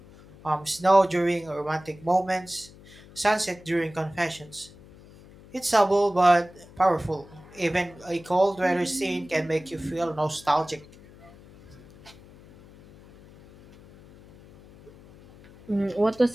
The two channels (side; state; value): left; noise; hum, 22 dB below the sound